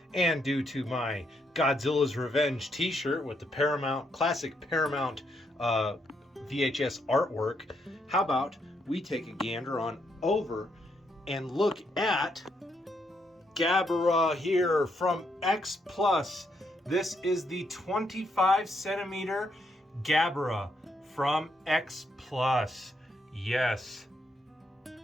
and due to my Godzilla's Revenge t-shirt with the classic Paramount VHS artwork, how about we take a gander on over and look at Gabara here from X Plus. This is the 25 centimeter Gabara from X Plus. Yes,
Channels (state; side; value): normal; both; correlation 0.77